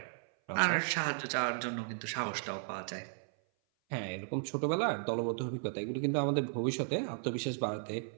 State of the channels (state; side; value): silent; left; 54 dB below the other